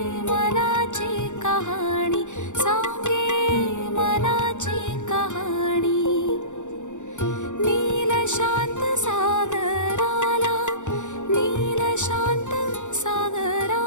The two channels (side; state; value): right; late; 0.85 ms